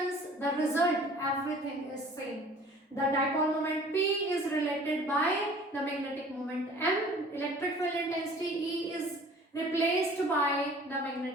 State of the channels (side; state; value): both; normal; correlation 0.49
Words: the result, everything is same. The dipole moment P is related by the magnetic moment M. Electric field intensity E is replaced by the